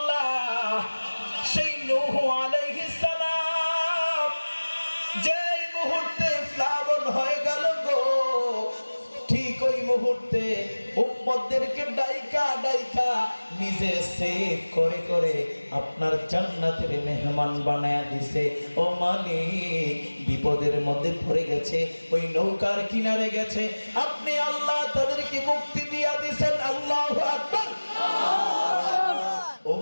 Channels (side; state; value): both; inverted; correlation -1.00